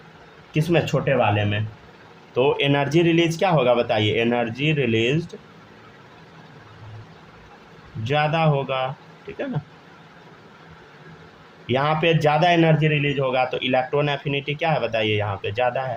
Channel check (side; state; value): both; identical; correlation 1.00